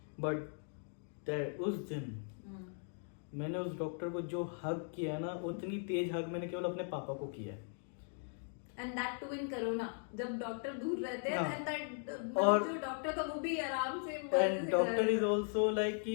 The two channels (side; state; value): right; silent; 52 dB below the other